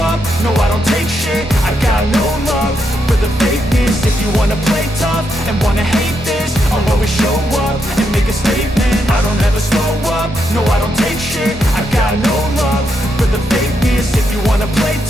up, no I don't take shit. I got no love for the fakeness. If you wanna play tough and wanna hate this, I'll always show up and make a statement. I don't ever slow up, no I don't take shit. I got no love for the fakeness. If you wanna play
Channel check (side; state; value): both; normal; correlation 0.81